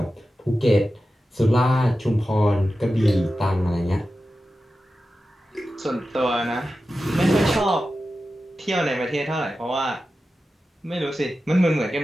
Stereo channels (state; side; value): normal; both; correlation 0.93